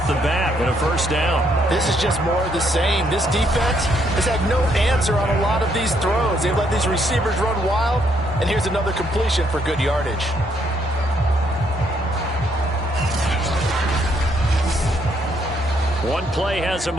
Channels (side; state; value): both; normal; correlation 0.72